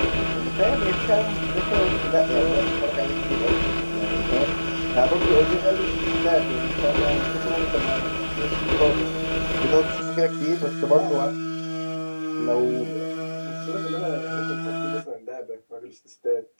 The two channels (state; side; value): inverted; both; correlation -1.00